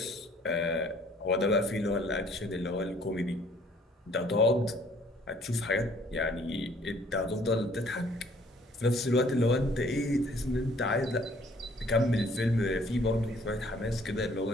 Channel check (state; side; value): normal; both; correlation 0.59